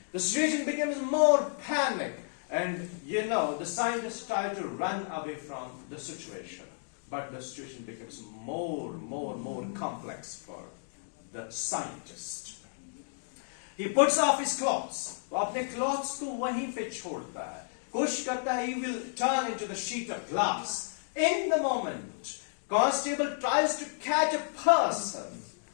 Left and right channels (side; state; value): right; silent; digital silence